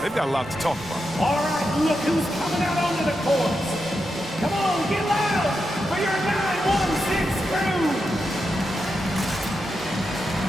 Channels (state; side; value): normal; both; correlation 0.87